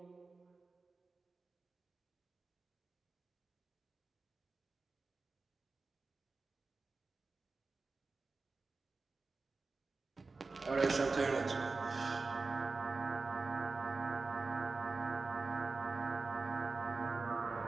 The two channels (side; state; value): left; quieter; 3.9 dB